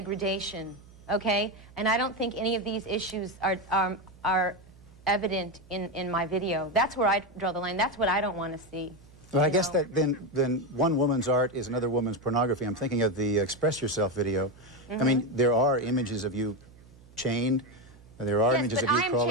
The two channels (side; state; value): right; noise; hum, 24 dB below the sound